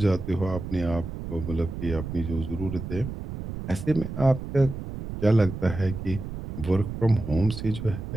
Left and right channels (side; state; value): right; noise; rumble, 8 dB below the sound